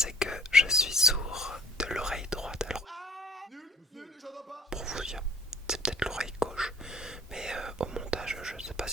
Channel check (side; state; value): both; normal; correlation 0.54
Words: que je suis sourd de l'oreille droite. Alors, pour vous dire, c'est peut-être l'oreille gauche, mais au montage, je ne sais pas